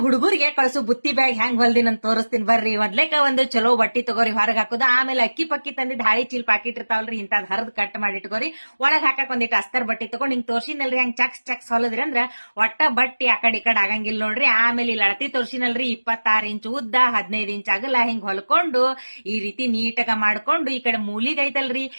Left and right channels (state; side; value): inverted; both; correlation -1.00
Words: ಹುಡುಗರಿಗೆ ಕಳ್ಸು ಬುತ್ತಿ ಬ್ಯಾಗ್ ಹೆಂಗ್ ಹೊಲ್ದಿನ ಅಂತ ತೋರಿಸ್ತೀನಿ ಬರ್ರಿ. ಮೊದ್ಲೇಕ ಒಂದು ಚಲೋ ಬಟ್ಟಿ ತಗೋರಿ ಹೊರಗ್ ಹಾಕುದು, ಆಮೇಲೆ ಅಕ್ಕಿ ಪಕ್ಕಿ ತಂದಿದ್ ಹಾಳಿ ಚೀಲ್ ಪಾಕಿಟ್ ಇರ್ತಾವಲ್ರಿ ಇಂತದ್ ಹರಿದ್ ಕಟ್ ಮಾಡಿ ಇಟ್ಕೋರಿ. ಒಳಗ್ ಹಾಕಕ್ ಒಂದಿಟ್ಟು ಅಸ್ತರ್ ಬಟ್ಟಿ ತಗೊಂಡ್ ಹಿಂಗ್ ತೋರ್ಸಿನಲ್ರಿ ಹೆಂಗ್ ಚಕ್ಸ್ ಚಕ್ಸ್ ಹೊಲದ್ರಿ ಅಂದ್ರ ಒಟ್ಟ ಬಟ್ಟಿ ಆ ಕಡೆ ಆಗಂಗಿಲ್ಲ ನೋಡ್ರಿ. ಆಮೇಲೆ ಇಲ್ಲಿ ಅಳತಿ ತೋರ್ಸಿನಲ್ರಿ 26 ಇಂಚ್ ಉದ್ದ 15 ಇಂಚ್ ಅಗಲ ಹಿಂಗ್ ಹೊಲ್ಕೊಂಡು ಈ ರೀತಿ ನೀಟಾಗ ಮಾಡ್ಕೊಂಡು ಈ ಕಡೆ ಮೂಲಿಗ್ ಐತಲ್ರಿ